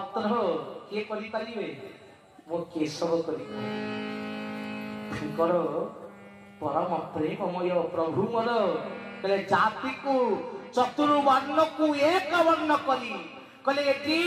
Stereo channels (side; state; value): both; identical; correlation 1.00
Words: କିଏ କରିପାରିବେ? ମୋ କେଶବ କରିପାରିବେ। ତାଙ୍କର ପରମ ପ୍ରେମମୟ ପ୍ରଭୁ ମୋର କହିଲେ ଜାତିକୁ ଚତୁର୍ବର୍ଣ୍ଣକୁ ଏକ ବର୍ଣ୍ଣ କରି କହିଲେ ଏଠି